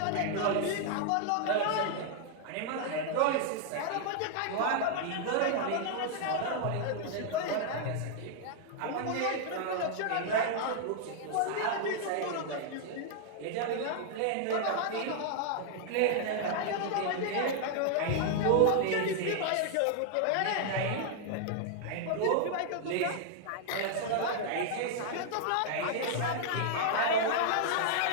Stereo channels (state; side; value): different; both; correlation 0.00